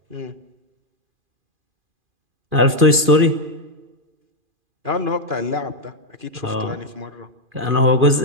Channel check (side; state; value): left; late; 2.4 ms